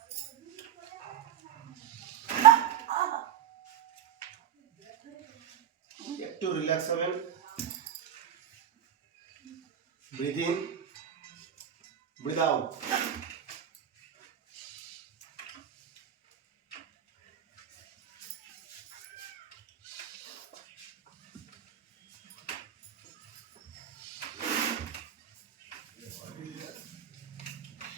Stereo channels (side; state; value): left; quieter; 9.8 dB